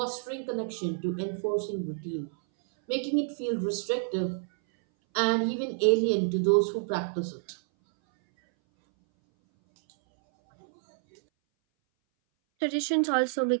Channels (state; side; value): silent; left; 59 dB below the other